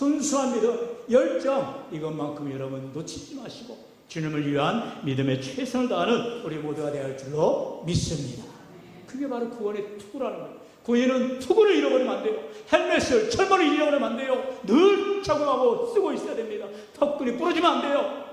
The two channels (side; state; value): both; identical; correlation 1.00